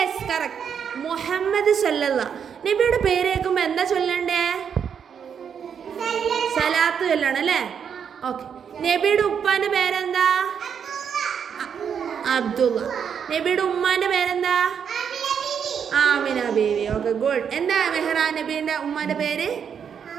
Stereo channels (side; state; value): left; quieter; 7.5 dB